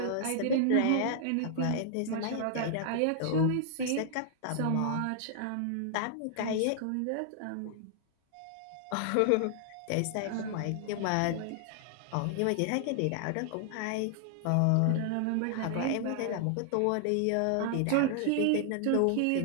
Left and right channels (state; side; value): different; both; correlation 0.00